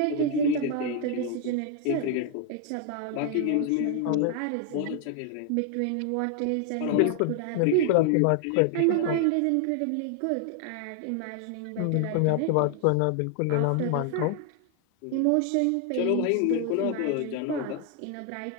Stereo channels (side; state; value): both; different; correlation 0.00